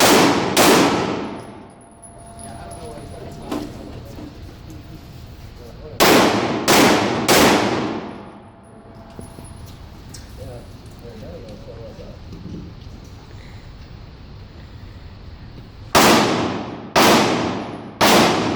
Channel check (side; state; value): both; identical; correlation 1.00